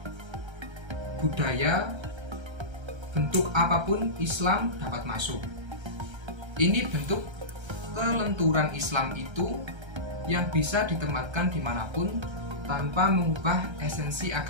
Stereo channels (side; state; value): left; late; 1.3 ms